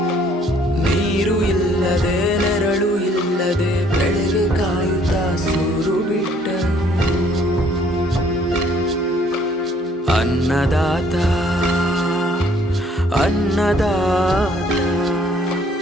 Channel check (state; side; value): normal; both; correlation 0.61